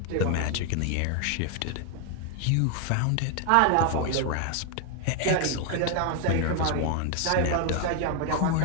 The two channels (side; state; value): both; different; correlation 0.00